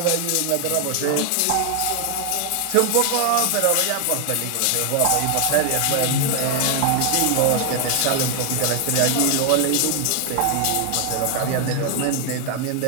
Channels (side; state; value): both; different; correlation 0.00